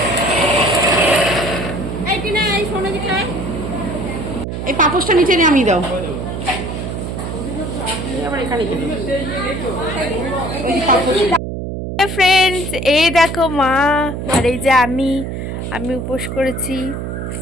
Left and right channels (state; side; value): noise; right; hum, 5 dB below the sound